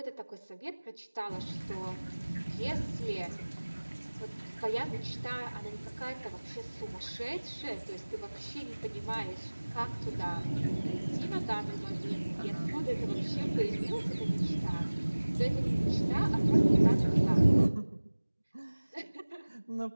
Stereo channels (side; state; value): both; inverted; correlation -1.00